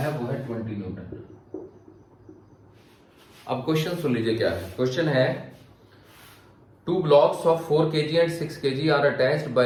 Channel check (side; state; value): both; identical; correlation 1.00